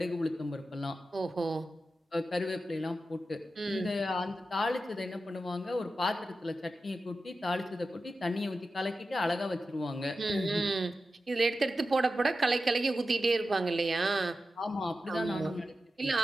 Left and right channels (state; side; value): normal; both; correlation 0.92